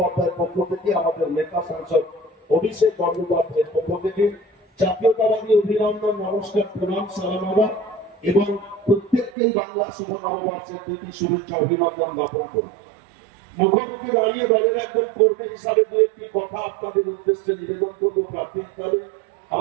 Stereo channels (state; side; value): drops out; left; at 9.3 s